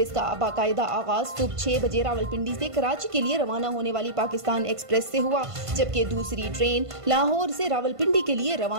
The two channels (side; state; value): left; late; 1.5 ms